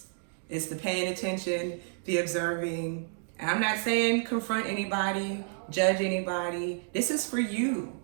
It's the paying attention, the observing. And I'm not saying confront anybody, judge anybody. This is for you,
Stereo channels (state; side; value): silent; left; digital silence